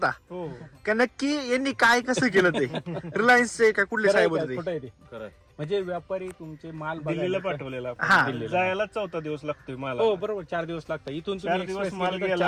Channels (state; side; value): identical; both; correlation 1.00